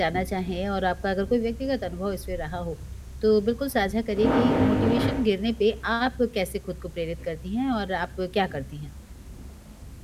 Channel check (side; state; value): both; identical; correlation 1.00